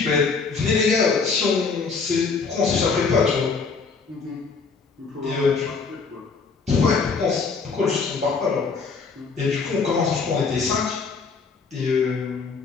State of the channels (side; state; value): right; quieter; 4.9 dB